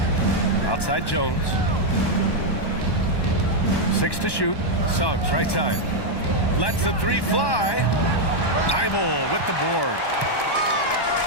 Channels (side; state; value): right; late; 1.1 ms